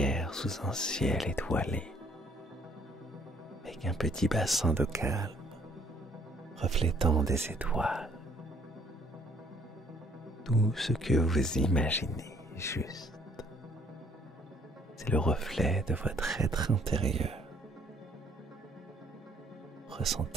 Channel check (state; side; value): normal; both; correlation 0.62